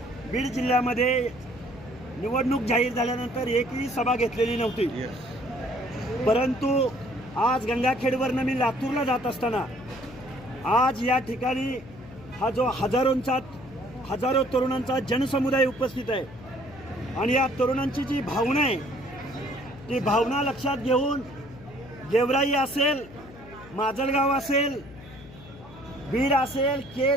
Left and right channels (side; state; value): left; noise; hum, 18 dB below the sound